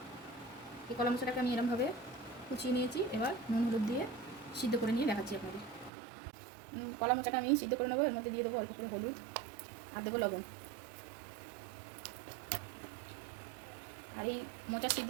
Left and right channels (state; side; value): drops out; left; at 5.9 s